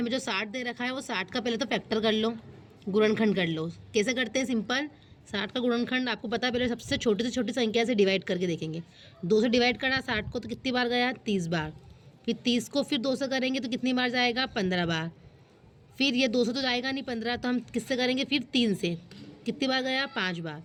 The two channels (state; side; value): identical; both; correlation 1.00